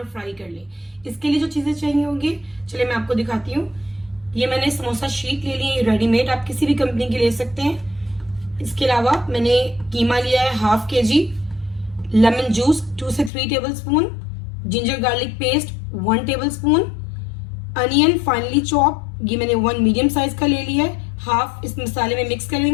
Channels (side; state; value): right; drops out; at 13.3 s